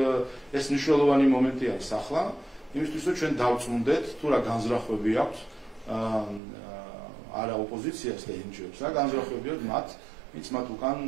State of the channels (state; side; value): drops out; left; at 6.4 s